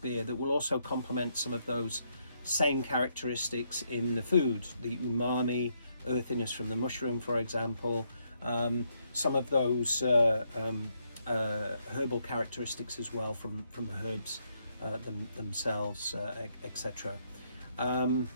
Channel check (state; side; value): inverted; both; correlation -0.76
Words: that will also complement some of those same characteristics in the food, the umami, earthiness from the mushroom, for example, some of those herbal characteristics as well from herbs themselves, etc.